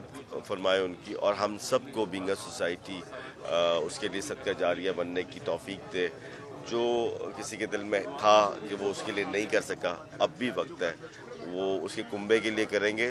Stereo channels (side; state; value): both; identical; correlation 1.00